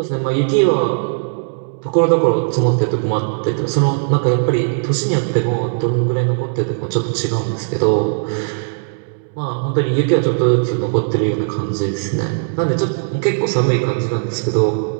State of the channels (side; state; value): left; silent; 67 dB below the other